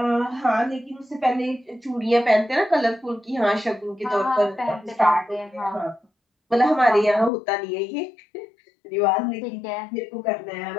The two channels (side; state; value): right; drops out; at 7.3 s